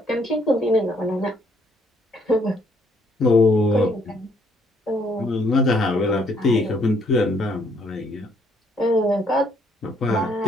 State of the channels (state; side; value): normal; both; correlation 0.67